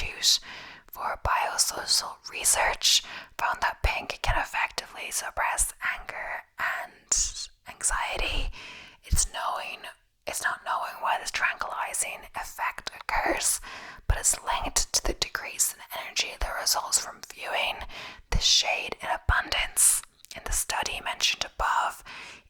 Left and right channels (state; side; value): identical; both; correlation 1.00